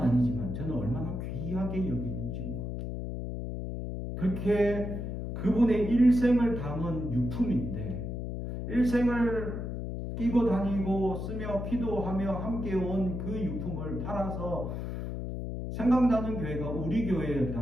저는 얼마나 귀하게 여기는지 모릅니다. 그렇게 그분의 일생을 담은 유품인데 일생을 끼고 다니고 쓰며 기도하며 함께 온 그 유품을 팔아서 생각나는 교회가 우리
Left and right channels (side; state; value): left; noise; hum, 5 dB below the sound